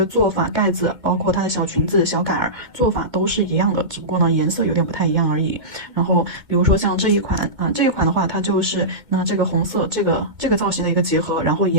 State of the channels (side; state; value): left; late; 2.1 ms